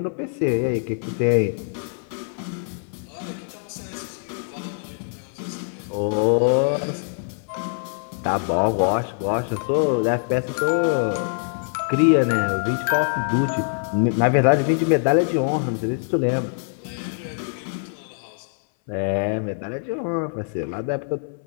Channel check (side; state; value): right; silent; 58 dB below the other